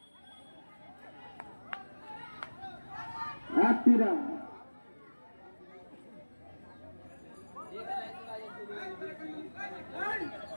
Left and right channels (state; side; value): inverted; both; correlation -1.00